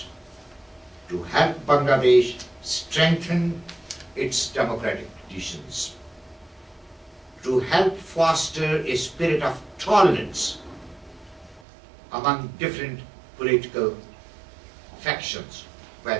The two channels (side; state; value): left; drops out; at 11.6 s